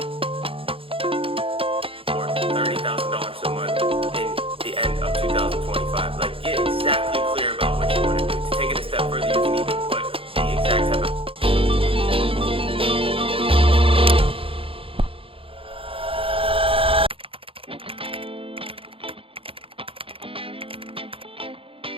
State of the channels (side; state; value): left; late; 0.27 ms